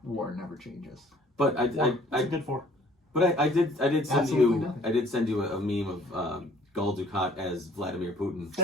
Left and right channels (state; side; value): normal; both; correlation 0.57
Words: never changes. But What's it good for? But I did send Absolutely you nothing. I did send you a meme of Gul Dukat as Vladimir Putin.